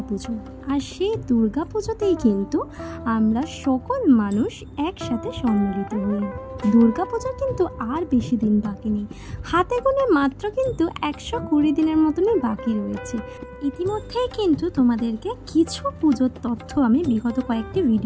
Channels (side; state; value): both; identical; correlation 1.00